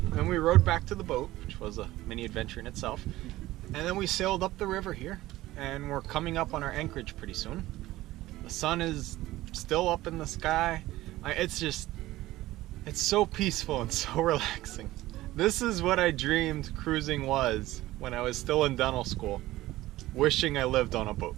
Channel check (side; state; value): left; quieter; 16.7 dB